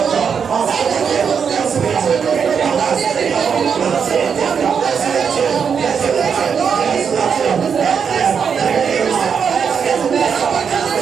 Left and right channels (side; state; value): left; quieter; 6.7 dB